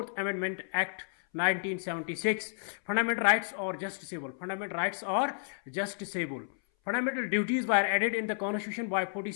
Amendment Act 1976. Fundamental rights are justiciable. Fundamental rights are justiciable. Fundamental duties were added in the Constitution by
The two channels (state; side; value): silent; right; 57 dB below the other